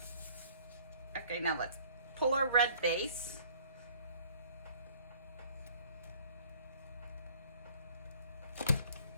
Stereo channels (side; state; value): both; inverted; correlation -0.55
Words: Okay, now let's pull our red base.